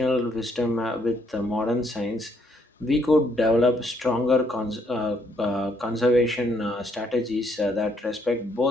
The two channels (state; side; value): normal; both; correlation 0.71